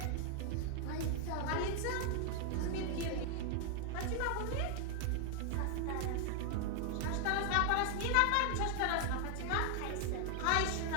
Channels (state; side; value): different; both; correlation 0.00